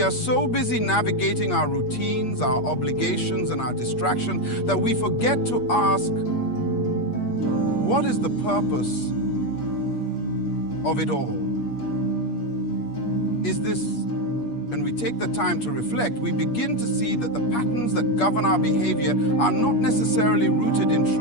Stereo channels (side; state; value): right; late; 8.5 ms